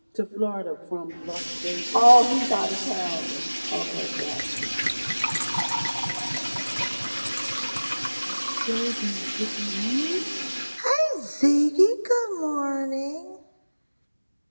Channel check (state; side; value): inverted; both; correlation -1.00